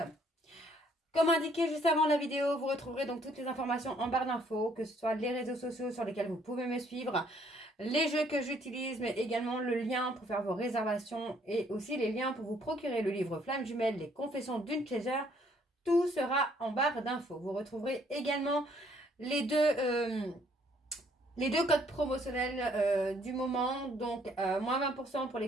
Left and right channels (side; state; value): both; normal; correlation 0.65